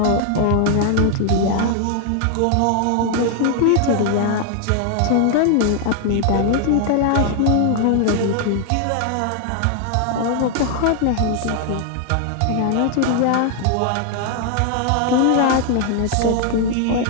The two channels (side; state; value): both; different; correlation 0.00